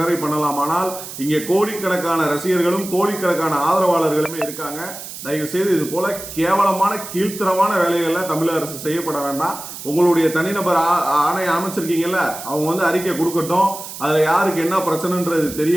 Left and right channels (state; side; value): noise; right; hiss, 11 dB below the sound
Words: பண்ணலாம். ஆனால் இங்கே கோடிக்கணக்கான ரசிகர்களும் கோடிக்கணக்கான ஆதரவாளர்களுமே இருக்காங்க. தயவு செய்து இது போல கேவலமான கீழ்த்தரமான வேலைகள்ல தமிழக அரசு செய்யப்பட வேண்டாம். உங்களுடைய தனிநபர் ஆணையம் அமைச்சிருக்கீங்கல்ல, அவங்க அறிக்கை கொடுக்கட்டும். அதுல யாருக்கு என்ன பிரச்சனைன்றது